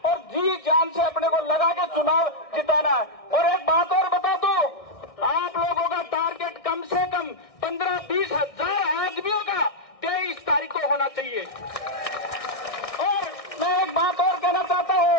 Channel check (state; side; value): late; right; 1.6 ms